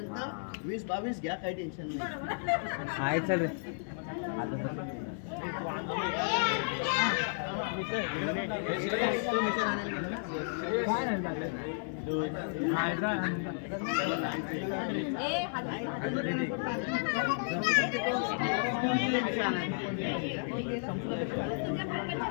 20-22 घ्या, काही टेन्शन नाही. आहे चालेल.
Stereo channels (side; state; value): right; silent; 56 dB below the other